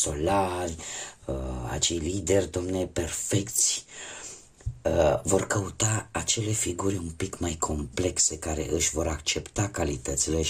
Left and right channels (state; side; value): identical; both; correlation 1.00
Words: acei lideri, domne, perfecți. Vor căuta acele figuri un pic mai complexe care își vor accepta calitățile,